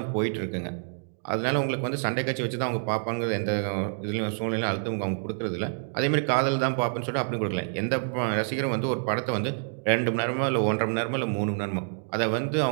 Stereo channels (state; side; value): silent; left; digital silence